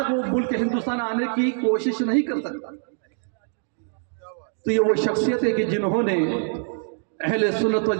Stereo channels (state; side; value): silent; left; 59 dB below the other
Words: وہ ملک ہندوستان آنے کی کوشش نہیں کر سکتا۔ تو یہ وہ شخصیت ہے کہ جنہوں نے اہل سنت و